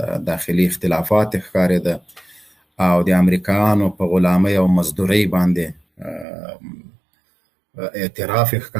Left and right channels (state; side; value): drops out; left; at 6.2 s